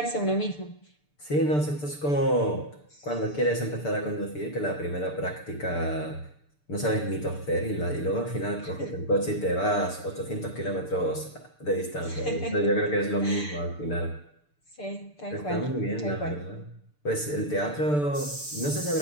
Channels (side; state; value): right; late; 6.8 ms